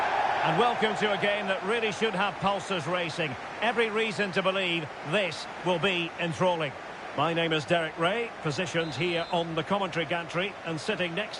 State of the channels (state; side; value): identical; both; correlation 1.00